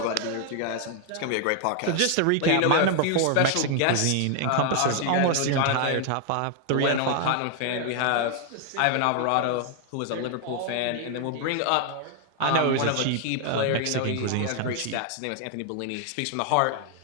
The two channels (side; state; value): both; different; correlation 0.00